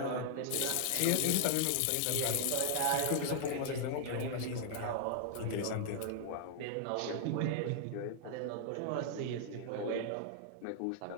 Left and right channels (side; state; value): both; different; correlation -0.01